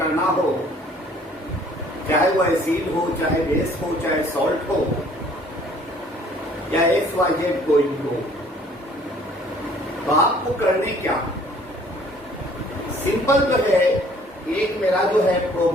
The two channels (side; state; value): both; normal; correlation 0.57